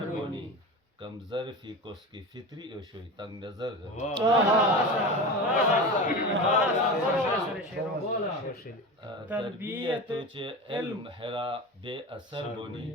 بنی کم ظرفی کس کی فطری اشوی تنگ نظر تربیتو چے علم حرا بے اثر بنی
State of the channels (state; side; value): normal; both; correlation 0.28